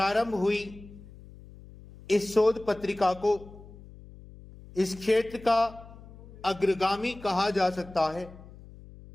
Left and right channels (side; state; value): left; noise; hum, 19 dB below the sound